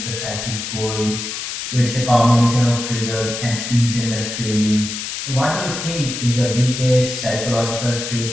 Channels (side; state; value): left; noise; hiss, 6 dB below the sound